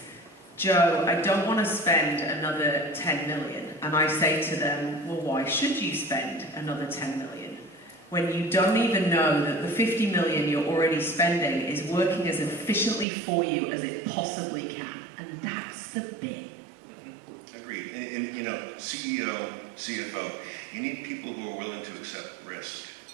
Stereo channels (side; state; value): left; drops out; at 13.1 s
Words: Joe, I don't want to spend another 10 million. And I say to them, well, why should you spend another 10 million? When you don't even know that the 50 million you're already spending is working as efficiently for you as it possibly can. And that's the bit. Agreed. And you know, CEO, CFO, you need people who are willing to accept risk.